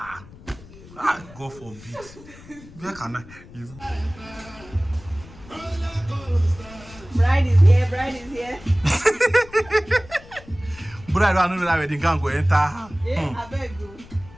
Ah, God forbid. Where can I? Bride is here, bride is here. Bride, I don't know that wedding can't go enter. Yeah, I beg you.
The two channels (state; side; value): noise; left; rumble, 20 dB below the sound